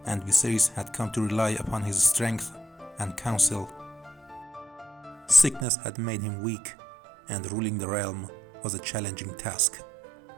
and Viserys had come to rely upon his strength and counsel. Sickness had made him weak, and ruling the realm was a challenging task.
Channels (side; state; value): left; drops out; at 5.7 s